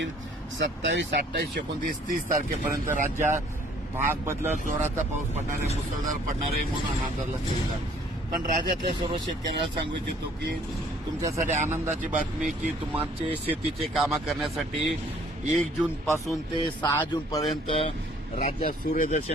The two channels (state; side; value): normal; both; correlation 0.58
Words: 27, 28, 29, 30 तारखेपर्यंत राज्यात भाग बदलत जोराचा पाऊस पडणार आहे, मुसळधार पडणार आहे म्हणून अंदाज लक्षात. पण राज्यातल्या सर्व शेतकऱ्याला सांगू इच्छितो की तुमच्यासाठी आनंदाची बातमी की तुमचे शेतीचे कामं करण्यासाठी 1 जून पासून ते 6 जून पर्यंत राज्यात